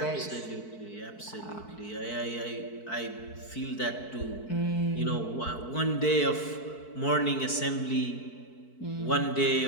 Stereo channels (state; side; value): late; right; 4.6 ms